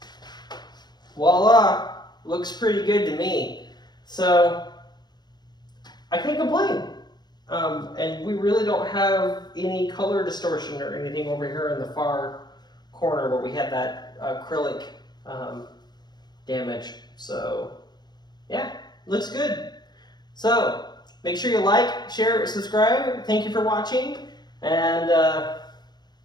voila, looks pretty good to me. So I can't complain. And we really don't have any color distortion or anything over here in the far corner where we had that acrylic damage. So yeah, looks good. So make sure you like, share, subscribe. Thank you for watching, and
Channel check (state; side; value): late; right; 0.20 ms